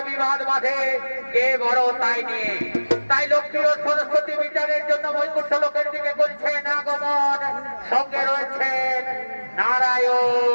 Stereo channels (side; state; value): both; inverted; correlation -1.00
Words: বিবাদ বাঁধে কে বড় তাই নিয়ে। তাই লক্ষ্মী ও সরস্বতী বিচারের জন্য বৈকুণ্ঠ লোকের দিকে করছেন আগমন। সঙ্গে রয়েছেন